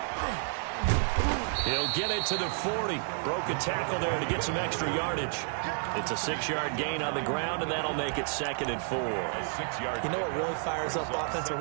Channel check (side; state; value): left; silent; 57 dB below the other